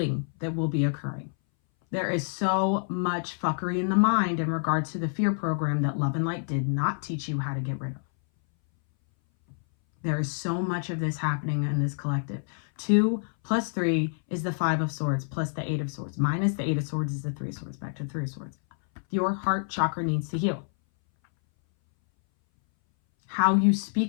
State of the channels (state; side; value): silent; right; 59 dB below the other